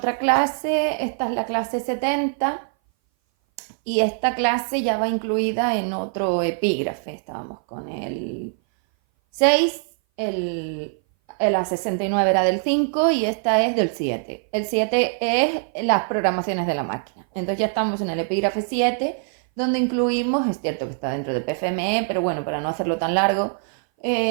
clase. Esta es la clase 70 y esta clase ya va incluida en otro epígrafe. Estábamos con el 6, la 69 era del 5 y esta es del 7. El 7 es las programaciones de la máquina. Entonces ya estamos en el epígrafe 7, donde incluimos, es cierto que está dentro de PFME, pero bueno, para no hacerlo tan largo,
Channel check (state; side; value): silent; left; 59 dB below the other